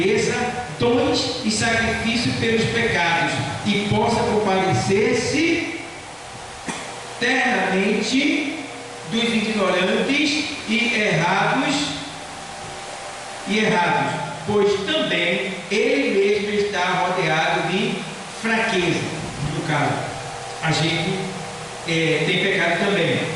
dons e sacrifício pelos pecados e possa compadecer-se eternamente dos ignorantes e errados, pois também ele mesmo está rodeado de fraqueza. No caso, a gente tem pecado também,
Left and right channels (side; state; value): both; identical; correlation 1.00